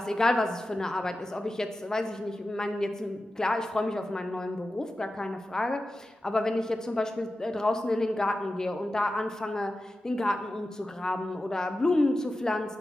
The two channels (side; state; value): both; normal; correlation 0.93